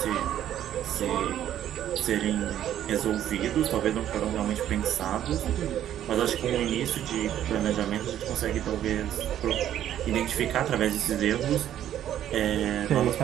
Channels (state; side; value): quieter; left; 11.2 dB